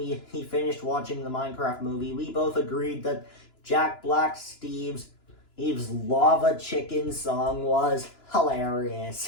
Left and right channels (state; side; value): late; right; 2.9 ms